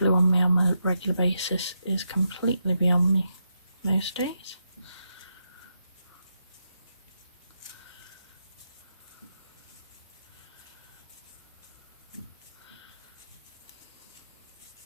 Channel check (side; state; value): both; inverted; correlation -0.84